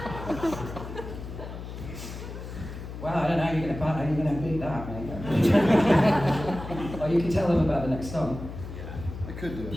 Well, I don't know how you're going to beat that, mate. Or you can tell them about the next song. I could do it, I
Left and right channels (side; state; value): left; noise; hum, 10 dB below the sound